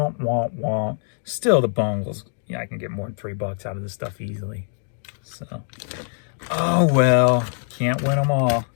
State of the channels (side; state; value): right; silent; 63 dB below the other